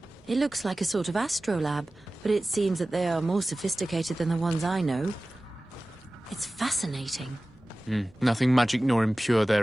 It looks like a sort of astrolab, but it seems that they are more sophisticated than the ones I know. It's fascinating. Nothing magic nor impure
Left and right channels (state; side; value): normal; both; correlation 0.97